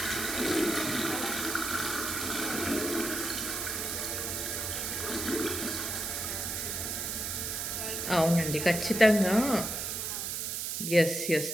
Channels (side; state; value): right; noise; hiss, 2 dB below the sound